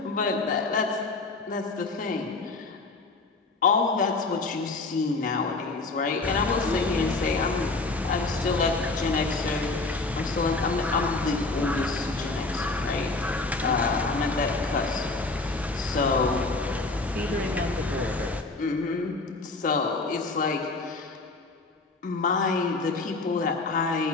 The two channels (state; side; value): quieter; right; 3.5 dB